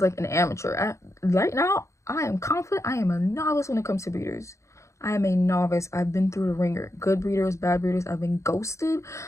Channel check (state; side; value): late; right; 0.14 ms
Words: like an amateur. Right now, I am confident. I am a novice when it comes to breeders. I am a novice. I've been through the ringer. Good breeders, bad breeders. I've been ghosted.